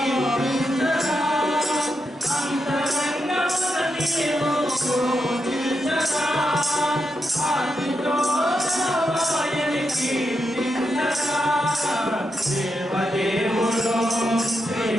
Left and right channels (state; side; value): normal; both; correlation 0.85